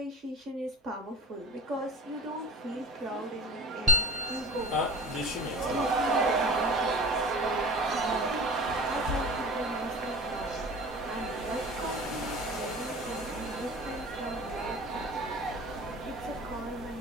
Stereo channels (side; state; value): both; normal; correlation 0.39